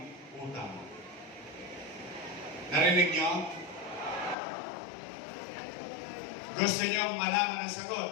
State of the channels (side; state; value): right; drops out; at 4.4 s